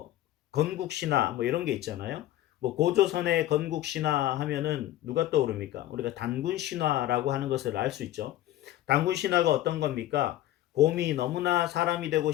건국 신화 뭐 이런 게 있잖아요. 뭐 고조선의 건국 신화 하면은 누가 떠오릅니까? 우리가 단군 신화라고 하는 것을 알 수 있죠. 단군 신화가 어떤 겁니까? 곰이 너무나 사람이 되고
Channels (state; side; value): quieter; right; 14.2 dB